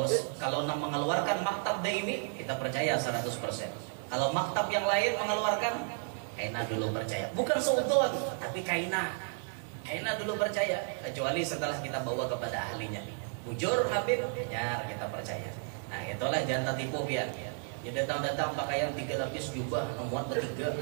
mengeluarkan maktab daimi kita percaya 100%. Kalau maktab yang lain mengeluarkan kaina dulu percaya, bukan seudon tapi kaina dulu percaya, kecuali setelah kita bawa kepada ahlinya. Bujur Habib, ya kita percaya. Nah itulah jangan tertipu biar. Ya datang pakaian 3 lapis jubah memuat bertiga.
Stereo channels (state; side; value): silent; left; 56 dB below the other